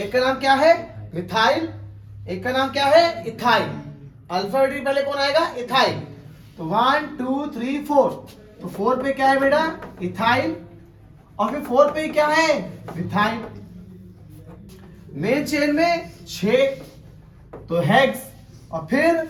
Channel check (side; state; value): both; identical; correlation 1.00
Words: का नाम क्या है मिथाइल, एक का नाम क्या है इथाइल, अल्फाबेटिक पहले कौन आएगा, इथाइल। तो 1 2 3 4, तो 4 पे क्या है बेटा, इथाइल, और फिर 4 पे क्या है, मिथाइल। मेन चेन में 6, तो हेक्स, और फिर